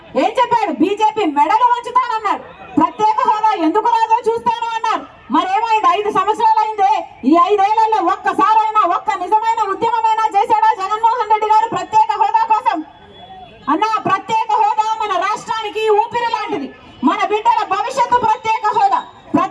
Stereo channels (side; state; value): both; identical; correlation 1.00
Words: ఏం చెప్పాడు? బీజేపీ మెడలు వంచుతానన్నాడు. ప్రత్యేక హోదా ఎందుకు రాదో చూస్తాను అన్నారు. మరేమైంది? 5 సంవత్సరాలు అయిందే. ఈ 5 ఏళ్లలో ఒక్కసారైనా ఒక్క నిజమైన ఉద్యమమైనా చేశాడా జగన్మోహన్ రెడ్డి గారు ప్రత్యేక హోదా కోసం? అన్నా, ప్రత్యేక హోదా మన రాష్ట్రానికి ఊపిరి లాంటిది. మన బిడ్డల భవిష్యత్తు ప్రత్యేక హోదా.